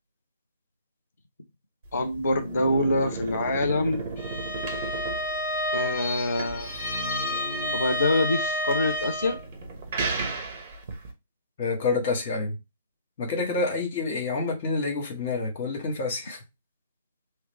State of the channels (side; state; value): both; inverted; correlation -0.52